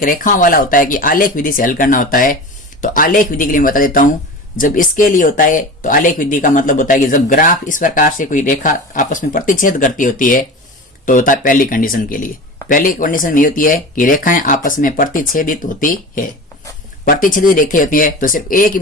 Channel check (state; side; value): normal; both; correlation 0.31